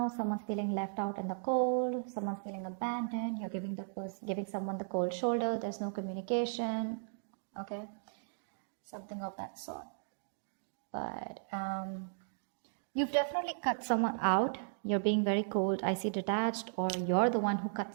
Someone's feeling left out in the cold. Someone's feeling abandoned. You're giving someone the cold shoulder. There's no communication. Okay, something of that sort. But you've definitely cut someone out. You're being very cold. I see detached, or you're the one who cut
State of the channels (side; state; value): left; silent; digital silence